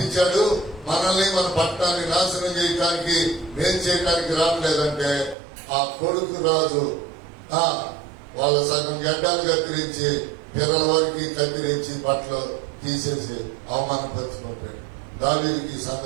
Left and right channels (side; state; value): left; drops out; at 5.4 s